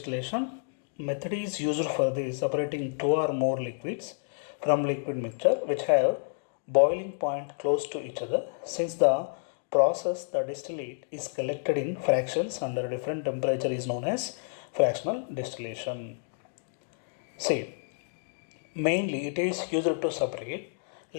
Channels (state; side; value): silent; right; digital silence